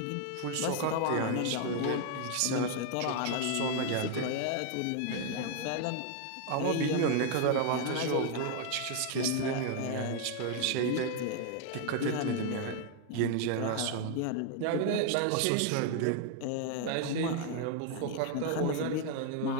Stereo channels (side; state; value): both; different; correlation 0.00